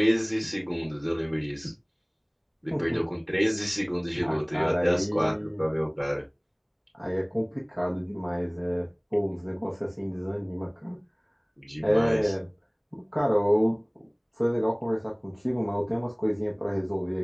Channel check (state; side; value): identical; both; correlation 1.00